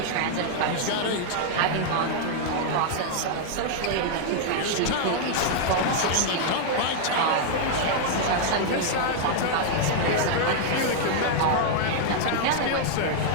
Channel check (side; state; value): both; different; correlation -0.01